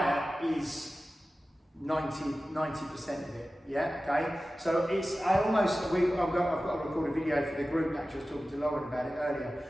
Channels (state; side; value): normal; both; correlation 0.95